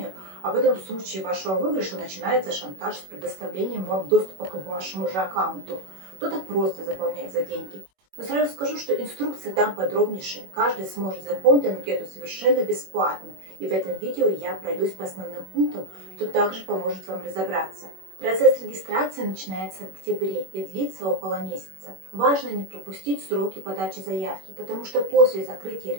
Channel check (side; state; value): left; late; 21 ms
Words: а потом в случае вашего выигрыша начинается шантаж с предоставлением вам доступа к вашему же аккаунту. Кто-то просто заполняет за деньги. Но сразу скажу, что инструкция там подробнейшая. Каждый сможет заполнить анкету совершенно бесплатно. И в этом видео я пройдусь по основным пунктам, что также поможет вам разобраться. Процесс регистрации начинается в октябре и длится около месяца. Важно не пропустить сроки подачи заявки, потому что после закрытия